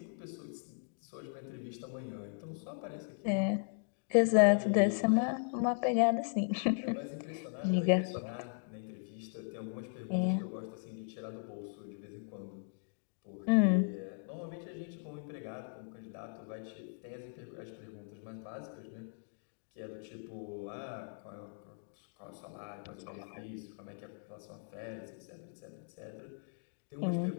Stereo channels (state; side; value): silent; right; digital silence